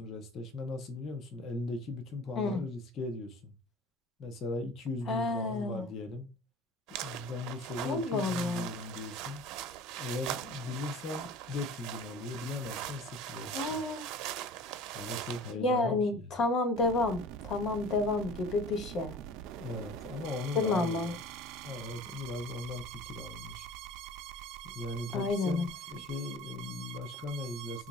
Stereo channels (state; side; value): normal; both; correlation 0.42